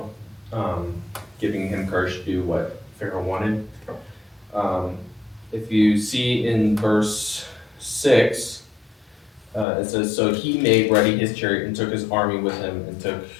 giving him courage to do what Pharaoh wanted. If you see in verse 6, it says, "So he made ready his chariot and took his army with him and took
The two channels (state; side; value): drops out; right; at 9.7 s